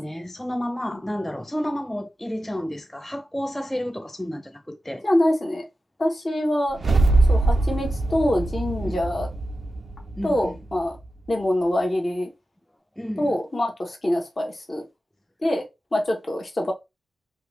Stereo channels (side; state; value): both; normal; correlation 0.92